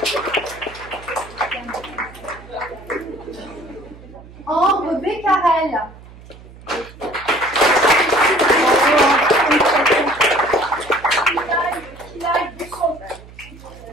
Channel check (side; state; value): right; noise; hum, 20 dB below the sound